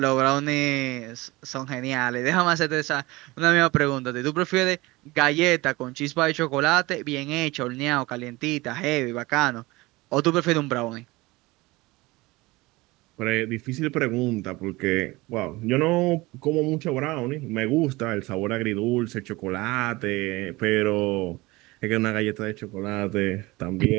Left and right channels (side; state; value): left; quieter; 21.6 dB